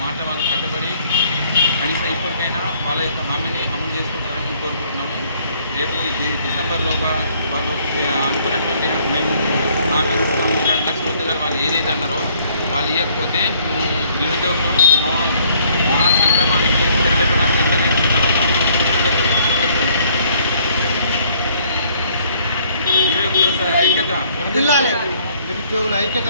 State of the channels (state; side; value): inverted; both; correlation -0.63